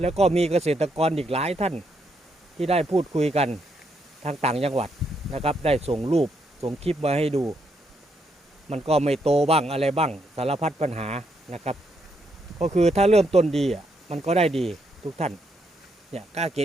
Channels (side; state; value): both; normal; correlation 0.77